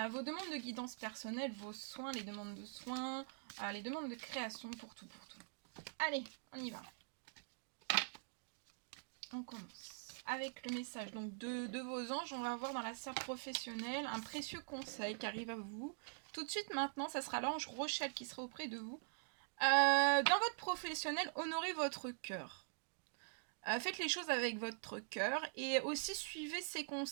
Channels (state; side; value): silent; left; digital silence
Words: demandes de guidance personnelle, vos soins, les demandes de soins, les demandes de création, pour tout. Allez, on y va. On commence avec le message donc de vos anges. On va voir dans la sphère professionnelle un précieux conseil qui arrive à vous. Tout de suite maintenant, ça sera l'ange Rochelle qui sera auprès de vous. Dans votre professionnel, honorez votre cœur. Faites les choses avec votre cœur et aussi suivez ses